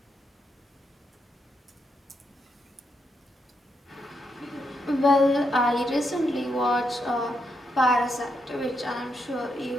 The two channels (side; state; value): both; normal; correlation 0.81